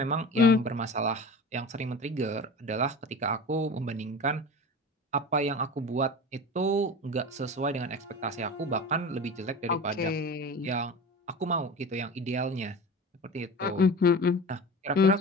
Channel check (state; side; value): normal; both; correlation 0.32